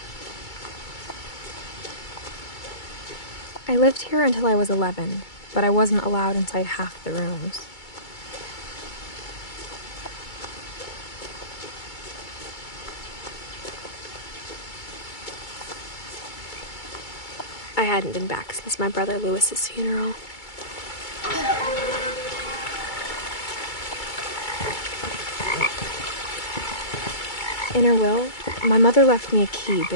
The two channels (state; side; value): late; right; 2.3 ms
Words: I lived here until I was 11, but I wasn't allowed inside half the rooms. I hadn't been back since my brother Lewis's funeral. In her will, my mother left me a key,